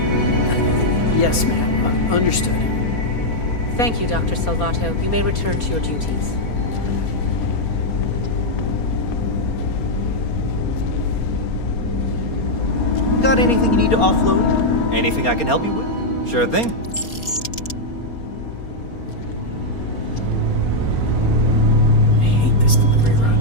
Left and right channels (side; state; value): right; late; 4.3 ms